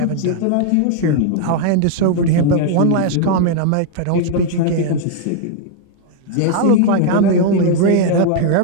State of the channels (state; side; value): different; both; correlation 0.00